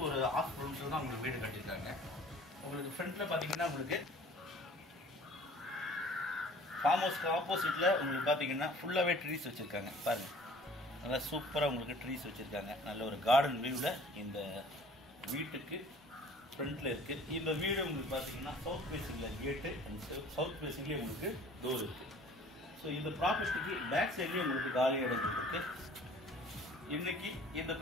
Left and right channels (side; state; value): both; normal; correlation 0.50